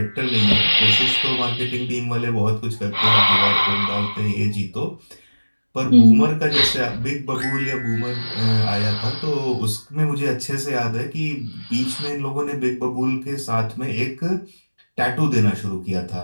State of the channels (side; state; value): both; inverted; correlation -1.00